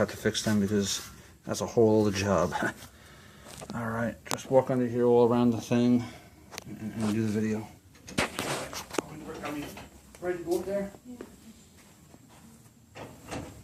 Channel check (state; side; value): identical; both; correlation 1.00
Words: to fix them because that's a whole other job. Alright, just walk under here all around the thing and do the video. Are we ready to go up there? Yeah.